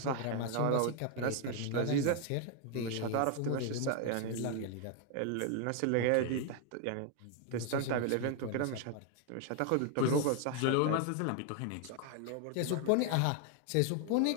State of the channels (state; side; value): different; both; correlation 0.01